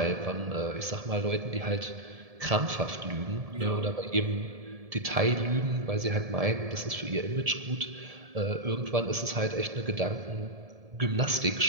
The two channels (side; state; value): left; late; 1.7 ms